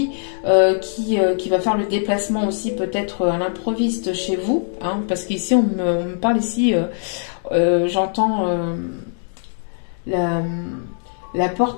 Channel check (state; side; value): silent; right; digital silence